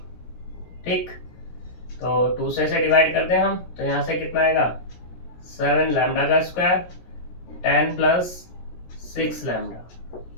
ठीक। तो 2 से डिवाइड करते हैं हम, तो यहाँ से कितना आएगा 7 लैम्डा का स्क्वायर 10 प्लस 6 लैम्डा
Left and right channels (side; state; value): right; late; 17 ms